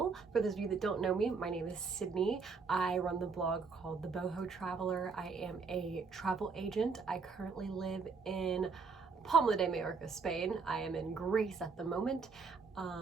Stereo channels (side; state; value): left; quieter; 4.9 dB